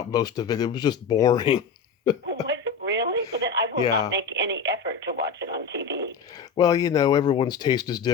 most of it. It was just boring. Was it really? But then I will not make any effort to watch it on TV. Well, everyone's taste is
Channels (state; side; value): quieter; right; 5.6 dB